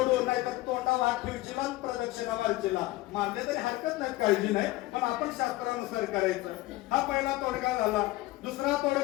नाही तर तोंडावर हात ठेवशीला प्रदक्षिणा मारशीला. मारले तरी हरकत नाही, काळजी नाही, पण आपण शास्त्रानुसार करायचं. हा पहिला तोडगा झाला. दुसरा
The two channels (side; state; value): right; quieter; 18.4 dB